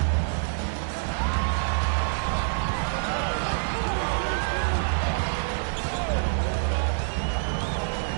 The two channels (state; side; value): silent; left; digital silence